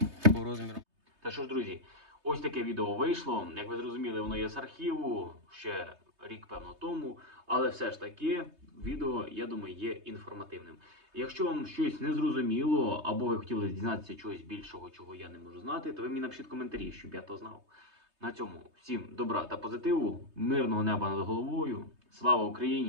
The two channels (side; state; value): left; late; 3.2 ms